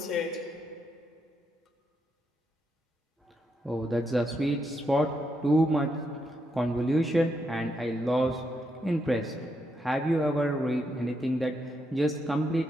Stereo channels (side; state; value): both; normal; correlation 0.80